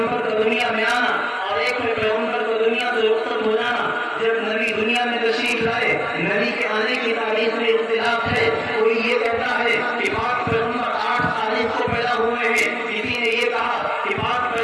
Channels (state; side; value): identical; both; correlation 1.00